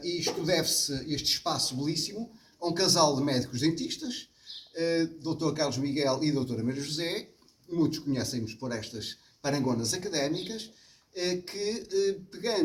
E isto deve-se, este espaço belíssimo, a um casal de médicos dentistas, Dr. Carlos Miguel e Dra. Maria José, muitos conhecem-nos por estas parangonas académicas, que,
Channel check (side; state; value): both; identical; correlation 1.00